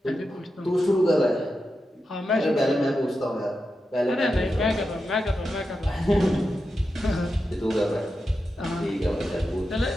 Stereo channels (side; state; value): both; normal; correlation 0.89